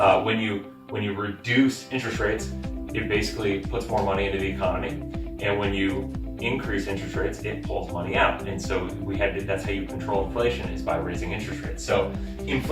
when you reduce interest rates, it basically puts more money into the economy, and when you increase interest rates, it pulls money out. And so that's how you control inflation, is by raising interest rates. So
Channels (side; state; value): both; identical; correlation 1.00